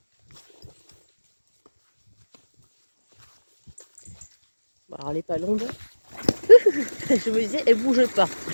Bon, alors les palombes, je me disais, elles bougent pas.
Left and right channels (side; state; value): both; inverted; correlation -1.00